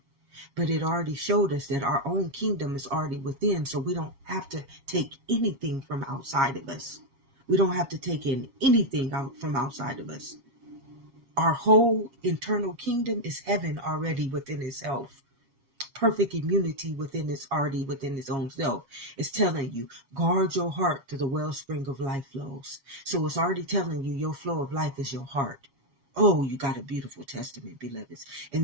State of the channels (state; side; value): late; left; 7.3 ms